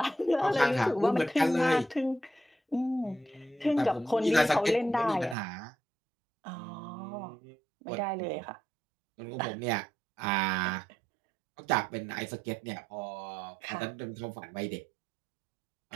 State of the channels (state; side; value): drops out; left; at 5.4 s